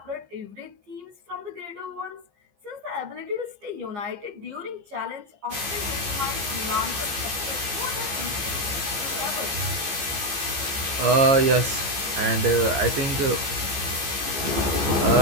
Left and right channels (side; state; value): left; late; 15 ms